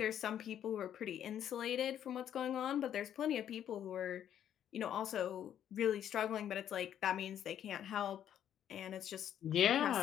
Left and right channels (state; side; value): quieter; right; 10.1 dB